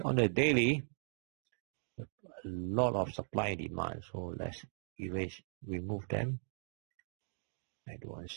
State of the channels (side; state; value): left; silent; digital silence